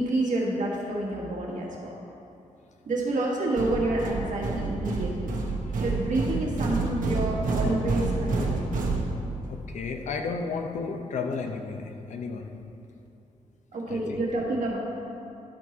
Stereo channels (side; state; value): both; normal; correlation 0.72